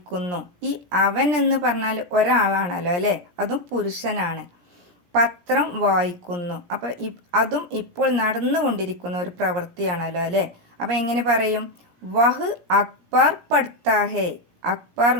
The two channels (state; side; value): late; left; 17 ms